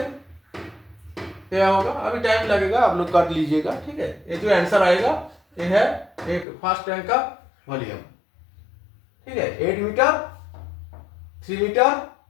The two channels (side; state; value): right; drops out; at 6.5 s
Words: क्या होगा? अभी टाइम लगेगा, आप लोग कर लीजिएगा, ठीक है। ये जो आंसर आएगा ये है एक फर्स्ट टैंक का वॉल्यूम, ठीक है। 8 मीटर, 3 मीटर,